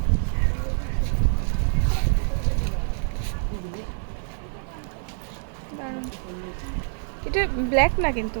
দারুণ। এটা ব্ল্যাক না কিন্তু,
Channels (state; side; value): silent; left; 61 dB below the other